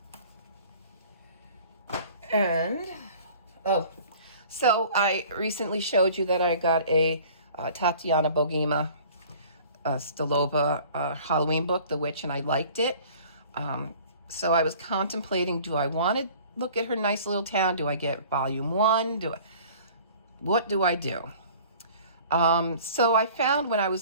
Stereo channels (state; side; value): inverted; both; correlation -0.48